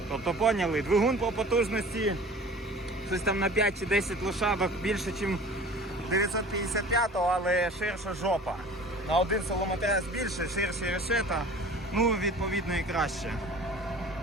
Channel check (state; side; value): normal; both; correlation 0.43